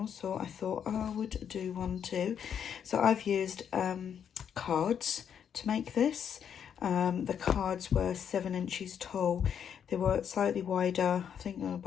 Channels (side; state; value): right; quieter; 8.2 dB